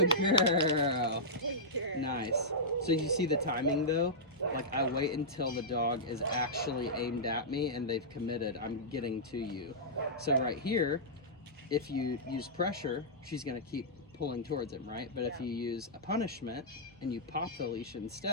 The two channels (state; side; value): normal; both; correlation -0.12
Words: girl. Nice. So you see the timing though? Like I wait until the dog is actually aimed at me and they've committed, I'm getting to you. So right here, if you use pressure, she's going to keep pulling towards him, right? But if you use a punishment and you pop the leash